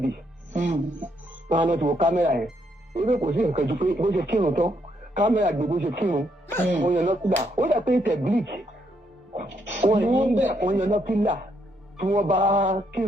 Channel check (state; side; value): normal; both; correlation 0.74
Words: Wọ́n á lọ ti wo kámẹ́rà yẹn. Ebe kò sí nǹkan ju pé bó ṣe kírun tán kámẹ́rà gbé bó ṣe kírun. Wọ́n yan lọ́kùnrin. Ó dà pé tẹ̀ bleach. Wọ́n yan lọ́kùnrin tí wọ́n bá